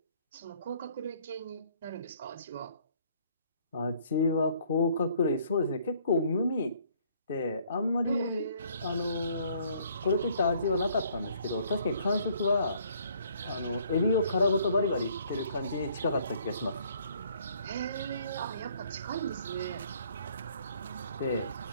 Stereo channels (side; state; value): both; inverted; correlation -0.62